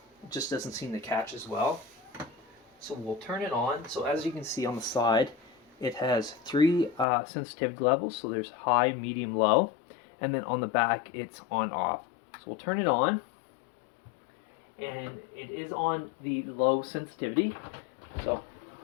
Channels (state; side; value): drops out; right; at 7.1 s